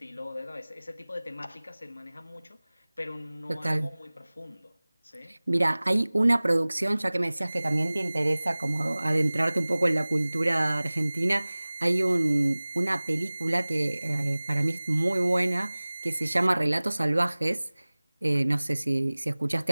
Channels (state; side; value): inverted; both; correlation -1.00